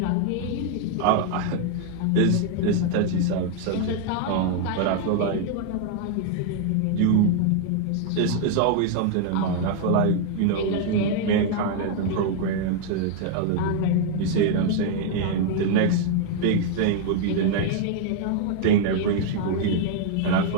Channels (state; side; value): different; both; correlation 0.00